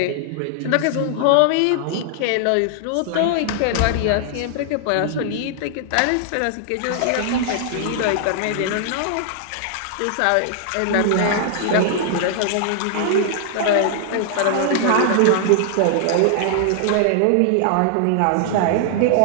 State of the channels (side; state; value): both; different; correlation -0.01